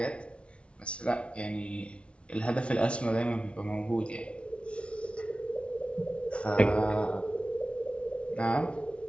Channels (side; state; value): right; late; 0.060 ms